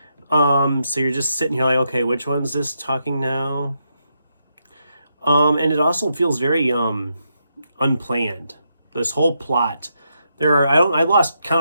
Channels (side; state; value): both; inverted; correlation -0.81